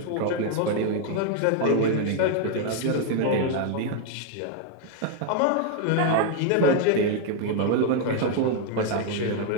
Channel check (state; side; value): different; both; correlation 0.00